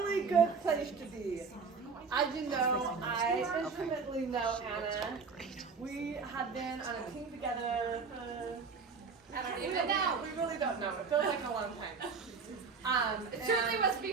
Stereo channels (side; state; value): left; quieter; 5.2 dB